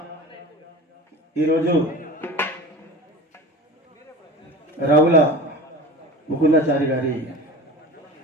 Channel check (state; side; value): normal; both; correlation 0.34